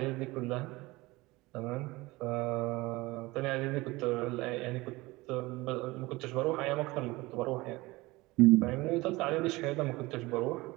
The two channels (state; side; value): quieter; left; 21.3 dB